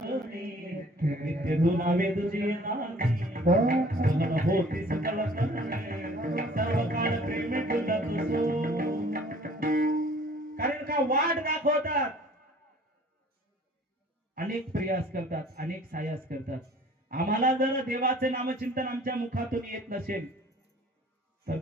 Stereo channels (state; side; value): normal; both; correlation 0.53